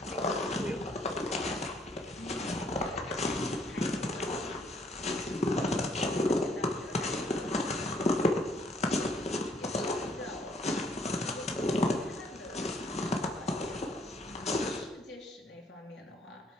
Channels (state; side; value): normal; both; correlation 0.66